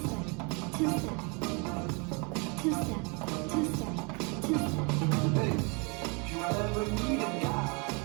two-step, two-step, two-step, two-step. Hey, if you ever need a guy,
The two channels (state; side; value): quieter; left; 32.2 dB